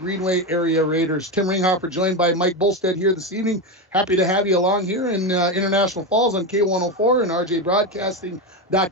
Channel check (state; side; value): normal; both; correlation 0.14